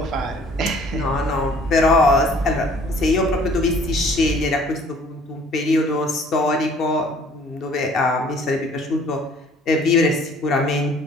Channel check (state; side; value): normal; both; correlation 0.55